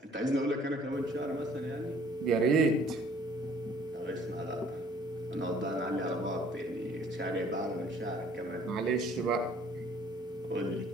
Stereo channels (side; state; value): both; normal; correlation 0.57